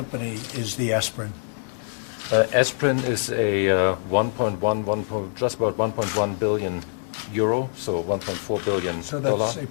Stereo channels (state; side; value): silent; right; digital silence